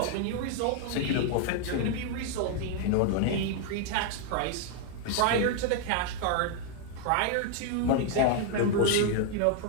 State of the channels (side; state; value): both; different; correlation 0.00